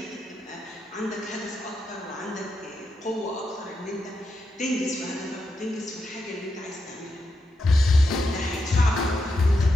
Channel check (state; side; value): normal; both; correlation 0.85